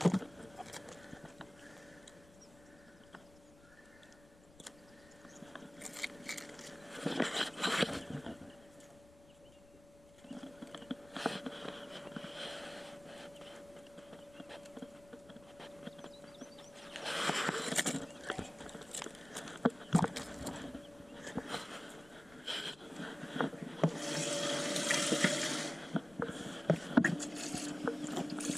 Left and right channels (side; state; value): left; noise; rumble, 23 dB below the sound